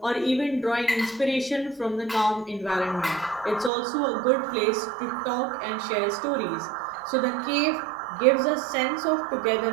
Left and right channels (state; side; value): drops out; left; at 3.7 s